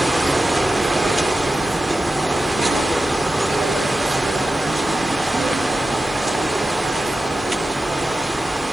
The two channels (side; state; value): left; noise; hiss, 26 dB below the sound